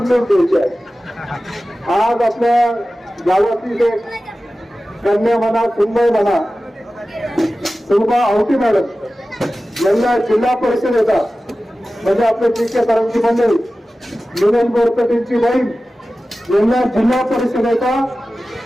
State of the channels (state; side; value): normal; both; correlation 0.95